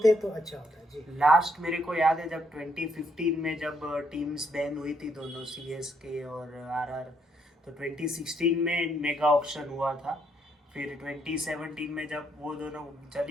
तो अच्छा होता है जी। लास्ट मेरे को याद है जब 2015 में जब टीम्स बैन हुई थी दोनों, सीएसके और आरआर, तो 2016 में मेगा ऑक्शन हुआ था। फिर 2017 में जब वो दोनों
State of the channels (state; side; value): normal; both; correlation 0.73